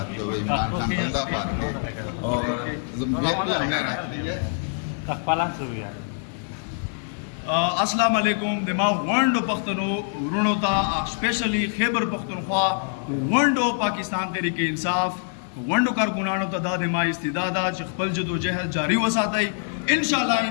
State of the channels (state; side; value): silent; right; digital silence